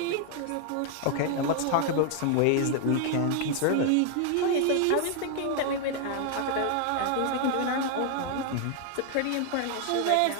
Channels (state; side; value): different; both; correlation 0.00